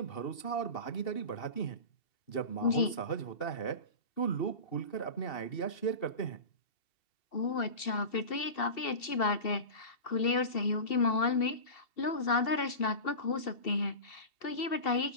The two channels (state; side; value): late; right; 2.7 ms